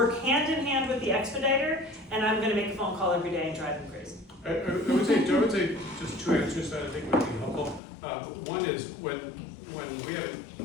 hand in hand with the expediter, and I'm gonna make a phone call every day and drive them crazy. I would say just 2 answers that I think would be helpful. One is when we have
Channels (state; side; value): drops out; right; at 7.8 s